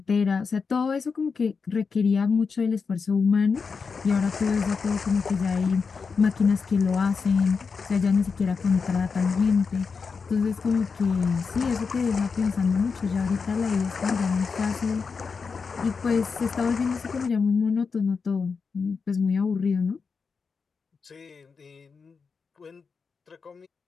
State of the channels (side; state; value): right; quieter; 5.2 dB